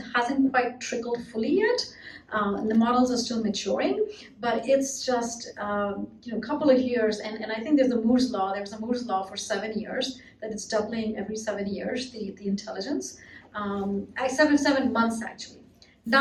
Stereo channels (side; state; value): both; identical; correlation 1.00